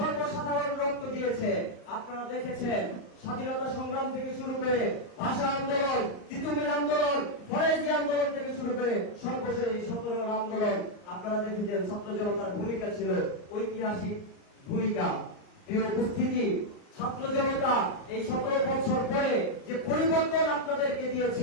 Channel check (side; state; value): right; late; 38 ms